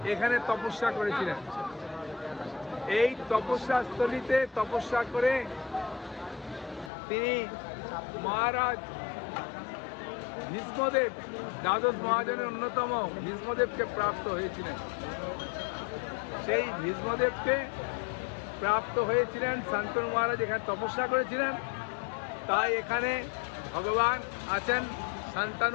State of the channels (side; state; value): right; drops out; at 6.9 s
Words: এখানে তপস্যা করেছিলেন। এই তপস্যা স্থলিতে তপস্যা করে তিনি মহারাজ ভীষ্মদেব, দ্বাদশ মহাজনের অন্যতম ভীষ্মদেবকে প্রাপ্ত হয়েছিলেন। সেই ভীষ্মদেবকে প্রাপ্ত হয়েছিলেন শান্তনু মহারাজ এখানে তপস্যা করেছিলেন। তাই এখানে ভগবান আছেন